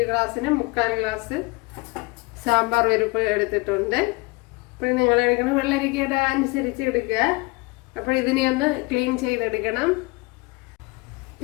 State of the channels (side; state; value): right; quieter; 25.7 dB